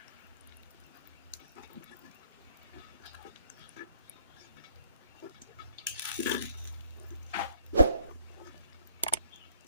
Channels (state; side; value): inverted; both; correlation -0.66